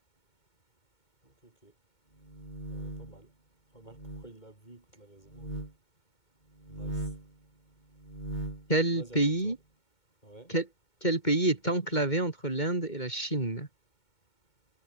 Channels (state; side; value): late; right; 2.2 ms